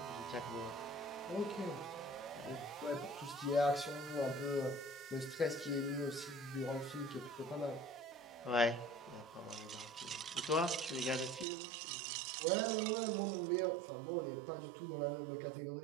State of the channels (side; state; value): left; drops out; at 11.5 s